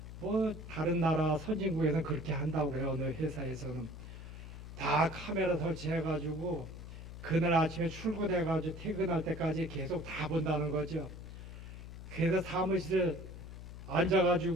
뭐 다른 나라 선진국에서는 그렇게 한다고 그래요. 어느 회사에서는 다 카메라 설치해 가지고 그날 아침에 출근해 가지고 퇴근할 때까지 계속 다 본다는 거죠. 그래서 사무실에 앉아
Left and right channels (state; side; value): noise; left; hum, 11 dB below the sound